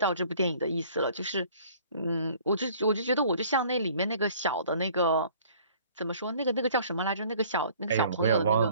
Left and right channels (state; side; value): inverted; both; correlation -0.53